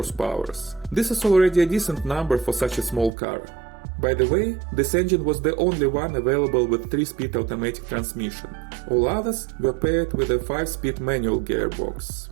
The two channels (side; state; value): left; drops out; at 3.1 s